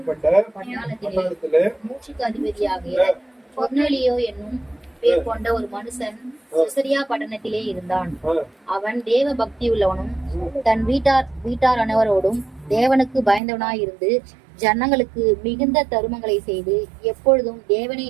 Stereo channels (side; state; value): left; drops out; at 13.4 s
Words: பட்டாளத்திலே மூச்சுக்கு அதிபதியாகிய கொர்நேலியோ என்னும் பேர் கொண்ட ஒரு மனுஷன் செசரியா பட்டணத்திலே இருந்தான். அவன் தேவ பக்தி உள்ளவனும் தன் வீட்டார் அனைவரோடும் தேவனுக்கு பயந்தவனாயிருந்து ஜனங்களுக்கு மிகுந்த தருமங்களை செய்து எப்பொழுதும் தேவனை